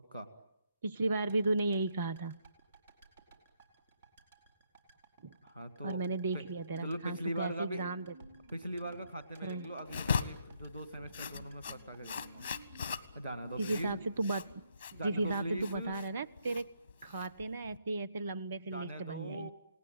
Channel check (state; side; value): inverted; both; correlation -0.75